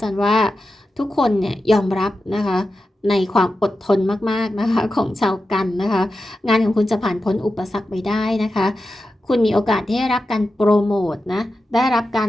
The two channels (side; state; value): both; normal; correlation 0.91